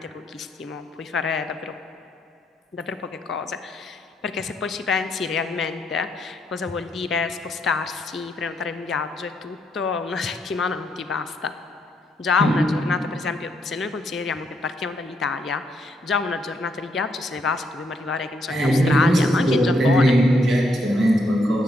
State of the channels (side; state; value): both; normal; correlation 0.76